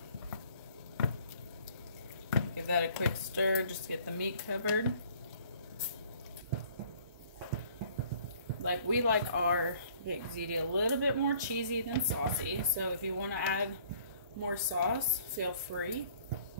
Give that a quick stir just to get the meat covered. Like, we like our baked ziti a little bit more cheesy than saucy, so if you want to add more sauce, feel free.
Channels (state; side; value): inverted; both; correlation -0.57